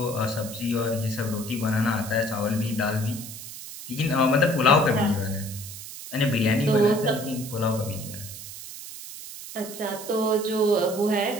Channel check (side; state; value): right; noise; hiss, 12 dB below the sound